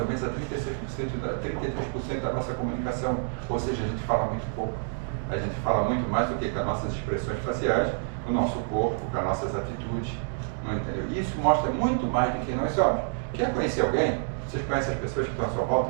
menos a 33% da nossa comunicação, ou seja, a gente fala muito pouco. A gente fala muito mais do que com as nossas expressões faciais, com o nosso corpo, com as nossas atitudes. Não entendeu? Isso mostra muito mais do que nós somos. Quer conhecer alguém? Vocês conhecem as pessoas que estão à sua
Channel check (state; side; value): silent; left; digital silence